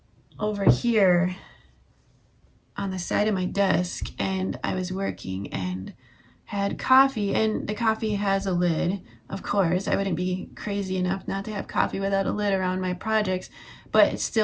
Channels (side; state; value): both; identical; correlation 1.00